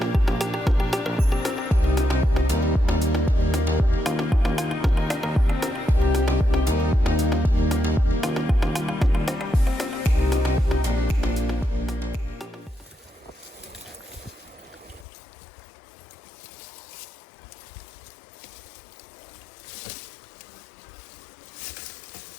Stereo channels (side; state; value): right; drops out; at 15.1 s